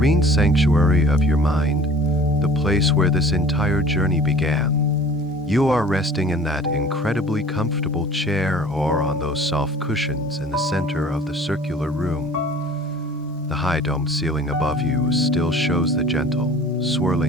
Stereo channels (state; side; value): normal; both; correlation 0.47